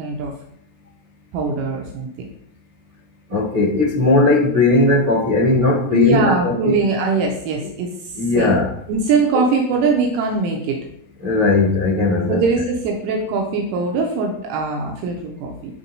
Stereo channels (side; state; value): left; late; 18 ms